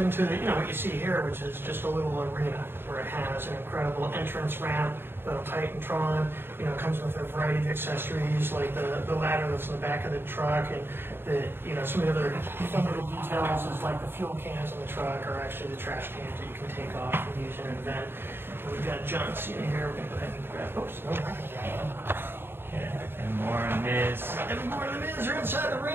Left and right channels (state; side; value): late; left; 0.11 ms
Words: you know, what you see here, which is just a little arena where it has an incredible entrance ramp, the Titantron, you know, comes with a variety of accessories like the ladder that's in the back of the truck, and the, you know, some of the other fun little details is like the fuel cans on the truck are actually the trash cans that you can take off and use in an event. And we've got John Cena here. We're going to go ahead and grab. Oops, no, And more on Miz. and more of the Miz are inside the